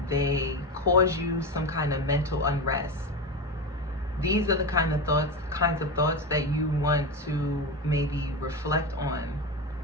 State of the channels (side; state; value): both; normal; correlation 0.20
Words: they cause you some kind of mental unrest, these are the kinds of thoughts that you want to maybe reflect on.